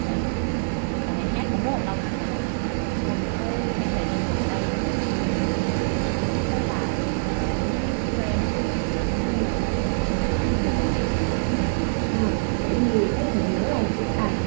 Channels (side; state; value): left; silent; 62 dB below the other